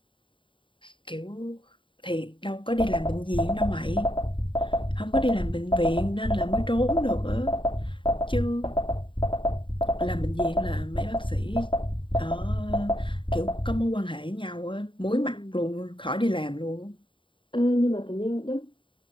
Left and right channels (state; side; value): late; right; 0.24 ms